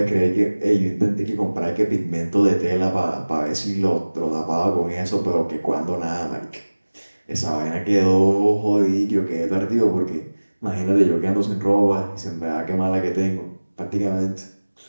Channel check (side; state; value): both; inverted; correlation -1.00